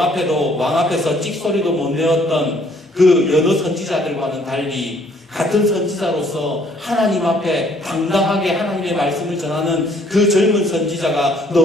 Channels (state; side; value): normal; both; correlation 0.62